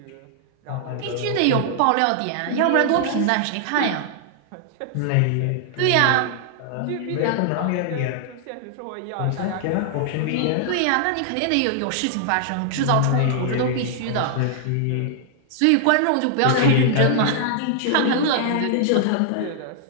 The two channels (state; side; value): different; both; correlation -0.01